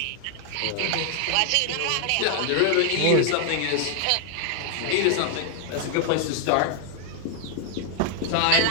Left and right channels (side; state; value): both; different; correlation 0.00